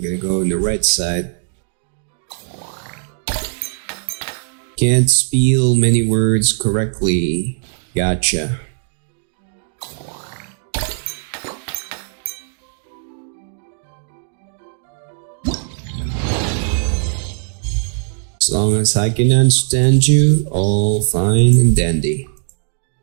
gonna go on the right side. Can't spell many words correctly. Gotcha. As long as I can understand you, all fine and dandy.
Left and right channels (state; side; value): silent; left; digital silence